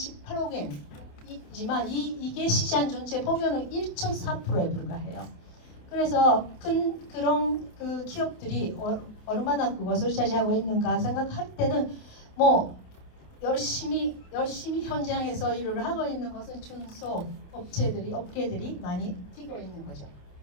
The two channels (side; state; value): right; late; 28 ms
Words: 엔이지만 이게 시장 전체 보면은 1.4%에 불과해요. 그래서 그런 그 기업들이 얼마나 그것을 차지하고 있는가 생각할 때는 뭐 열심히 현장에서 일을 하고 있는 것은 중소 업계들이 많이 뛰고 있는 거죠.